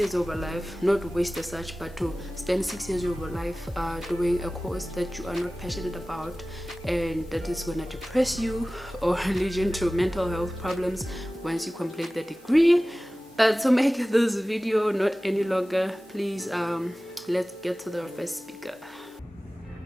of your life, not waste as such, but to spend 6 years of your life doing a course that you are not passionate about, and that is going to depress you or lead you into mental health problems once you complete the degree. But to make this video not any longer, please let's get to the first speaker.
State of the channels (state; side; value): normal; both; correlation 0.97